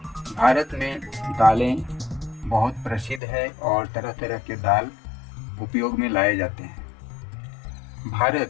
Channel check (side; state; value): right; drops out; at 3.2 s